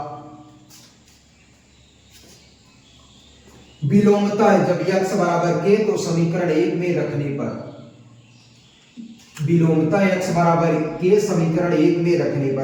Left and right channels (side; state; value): both; identical; correlation 1.00